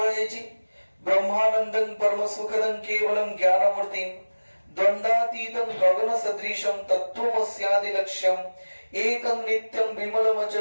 ବ୍ରହ୍ମାନନ୍ଦଂ ପରମ ସୁଖଦଂ କେବଳଂ ଜ୍ଞାନମୂର୍ତ୍ତିଂ ଦ୍ୱନ୍ଦ୍ୱାତୀତଂ ଗଗନ ସଦୃଶଂ ତତ୍ତ୍ୱମସ୍ୟାଦି ଲକ୍ଷ୍ୟଂ ଏକଂ ନିତ୍ୟଂ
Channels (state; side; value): inverted; both; correlation -1.00